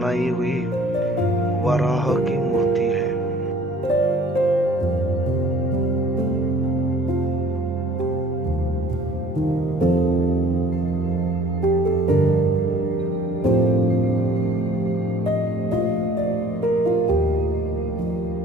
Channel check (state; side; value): normal; both; correlation 0.52